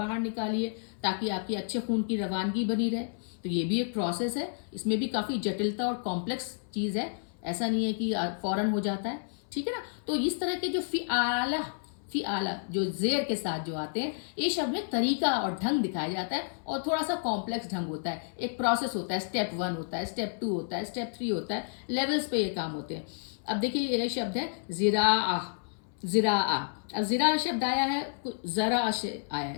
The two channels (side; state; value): right; silent; 57 dB below the other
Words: निकालिए ताकि आपकी अच्छे खून की रवानगी बनी रहे। तो ये भी एक प्रोसेस है, इसमें भी काफ़ी जटिलता और कॉम्प्लेक्स चीज़ है, ऐसा नहीं है कि फ़ौरन हो जाता है, ठीक है ना। तो इस तरह के जो फ़िआला जो जेर के साथ जो आते हैं, ये शब्द में तरीका और ढंग दिखाया जाता है, और थोड़ा सा कॉम्प्लेक्स ढंग होता है, एक प्रोसेस होता है, स्टेप 1 होता है, स्टेप 2 होता है, स्टेप 3 होता है, लेवल्स पे ये काम होते हैं। अब देखिए ये शब्द है ज़िराआ। अब ज़िरा शब्द आया है, ज़रा से आया